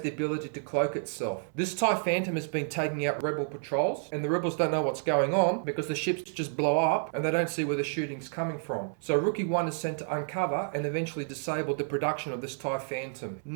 the ability to cloak itself. This TIE Phantom has been taking out Rebel patrols, and the Rebels don't know what's going on because the ships just blow up and they don't see where the shooting's coming from. So Rookie 1 is sent to uncover and eventually disable the production of this TIE Phantom.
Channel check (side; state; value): left; silent; 58 dB below the other